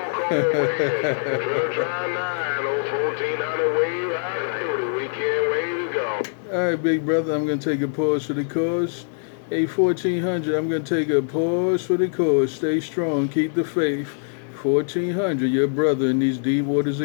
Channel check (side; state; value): right; silent; 58 dB below the other